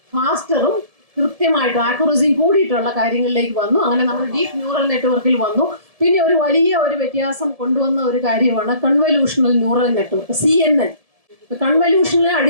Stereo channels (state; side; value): late; left; 1.7 ms